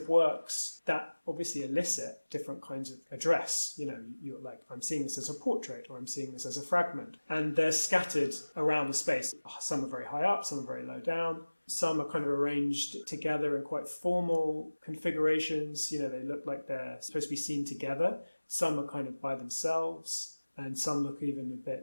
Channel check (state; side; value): inverted; both; correlation -1.00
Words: works that obviously elicit different kinds of address. You're like, I'm seeing this as a portrait, or I'm seeing this as a fragment. And they're scattered around the space. Some are very high up, some are very low down. Some are kind of arranged together in quite formal configurations. They look like they're supposed to be seen together. Some are kind of by themselves, and some look even a